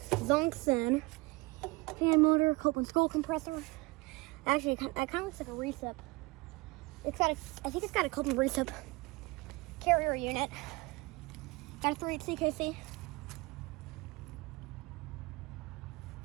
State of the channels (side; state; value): left; quieter; 23.9 dB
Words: Zonxen fan motor, Copeland scroll compressor. Actually, that kind of looks like a recip. I think it's got a Copeland recip carrier unit. Got a 3 CKC.